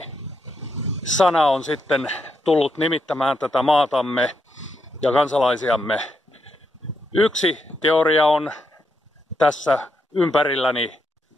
on sitten tullut nimittämään tätä maatamme ja kansalaisiamme. Yksi teoria on tässä ympärilläni.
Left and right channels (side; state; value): both; normal; correlation 0.81